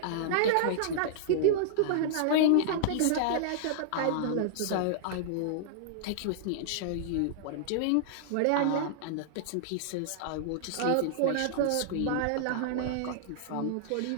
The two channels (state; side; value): different; both; correlation -0.01